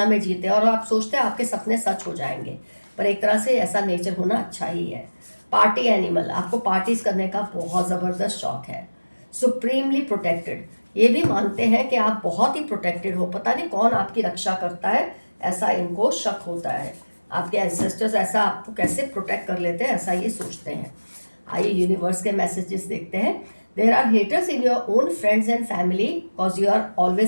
में जीते और आप सोचते हैं आपके सपने सच हो जाएंगे, पर एक तरह से ऐसा नेचर होना अच्छा ही है। पार्टी एनिमल, आपको पार्टीज करने का बहुत ज़बरदस्त शौक है। सुप्रीमली प्रोटेक्टेड, ये भी मानते हैं कि आप बहुत ही प्रोटेक्टेड हो, पता नहीं कौन आपकी रक्षा करता है, ऐसा इनको शक होता है, आपके एंसेस्टर्स ऐसा आपको कैसे प्रोटेक्ट कर लेते हैं, ऐसा ये सोचते हैं। आइए यूनिवर्स के मैसेजेस देखते हैं। There are haters in your own friends and family because you are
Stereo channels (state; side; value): inverted; both; correlation -1.00